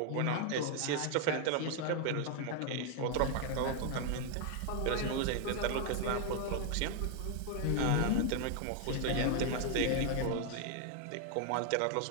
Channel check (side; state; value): both; different; correlation 0.00